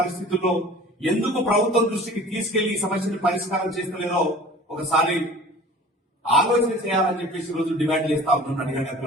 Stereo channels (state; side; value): normal; both; correlation 0.43